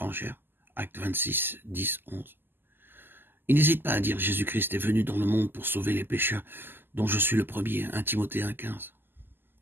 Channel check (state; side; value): late; left; 0.096 ms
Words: Acte 26, 10, 11. Il n'hésite pas à dire Jésus-Christ est venu dans le monde pour sauver les pécheurs, dont je suis le premier, 1 Timothée 1, 15.